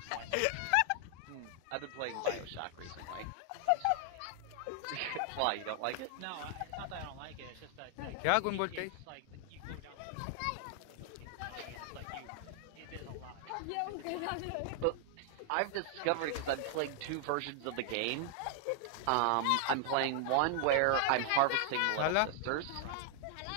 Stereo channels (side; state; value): both; different; correlation 0.00